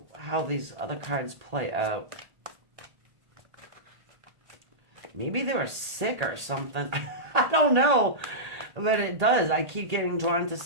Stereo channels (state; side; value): late; left; 1.8 ms